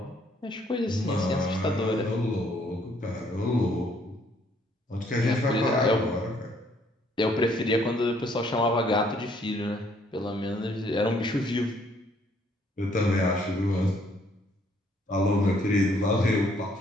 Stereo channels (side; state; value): both; normal; correlation 0.65